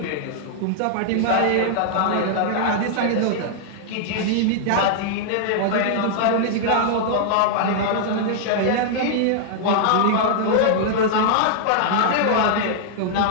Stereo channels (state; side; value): different; both; correlation -0.01